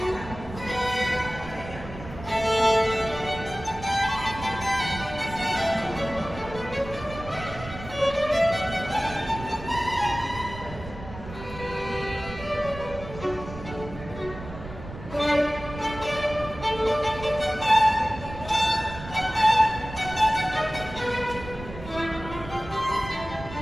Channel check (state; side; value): noise; right; rumble, 13 dB below the sound